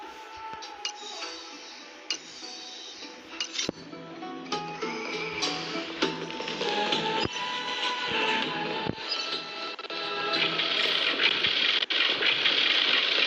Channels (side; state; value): both; identical; correlation 1.00